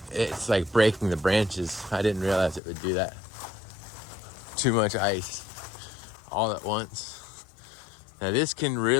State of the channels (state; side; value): drops out; right; at 2.6 s